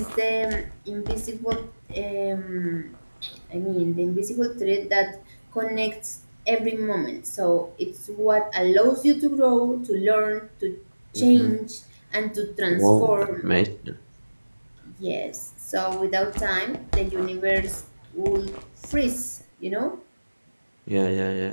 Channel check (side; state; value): both; inverted; correlation -1.00